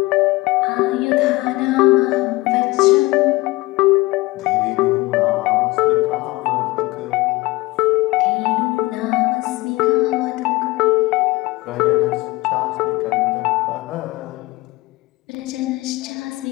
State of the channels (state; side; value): quieter; right; 21.0 dB